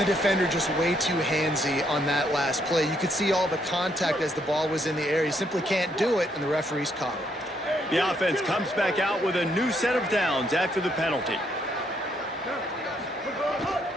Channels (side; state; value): both; normal; correlation 0.73